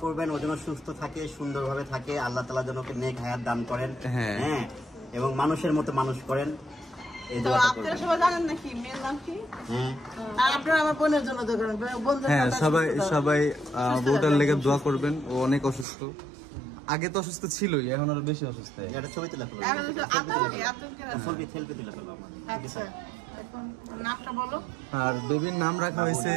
করবেন, ও যেন সুস্থ থাকে, সুন্দরভাবে থাকে, আল্লাহ তাআলা যেন ওকে নেক হায়াত দান করেন, হ্যাঁ, এবং মানুষের মতো মানুষ করেন। আপনারা সবাই জানেন নাকি মেয়ের নাম কি? আর আপনারা আমার বোনের জন্য দোয়া করবেন। হ্যাঁ, সবাই বোটার লেগে দোয়া করবেন। ও অনেক অসুস্থ, আগে তো অসুস্থ ছিলই, এখন আরো বেশি অসুস্থ। এটা ছবি তুলে ফেলো, সেলফি তুলে ফেলো। আচ্ছা, এখন নামটা বলো। আর বেবির নাম রাখা হয়েছে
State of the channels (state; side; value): drops out; left; at 15.9 s